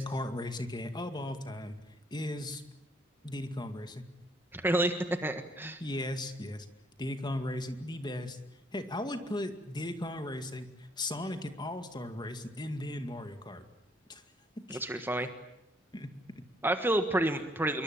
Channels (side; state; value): both; normal; correlation 0.67